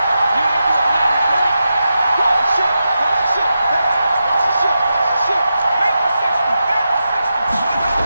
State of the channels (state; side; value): inverted; both; correlation -0.89